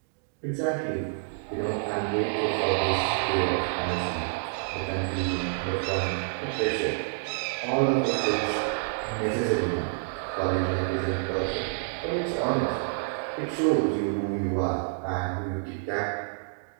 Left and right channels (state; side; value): silent; left; digital silence